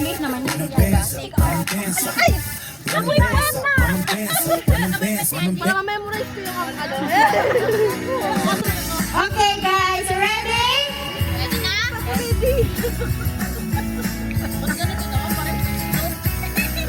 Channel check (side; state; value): both; identical; correlation 1.00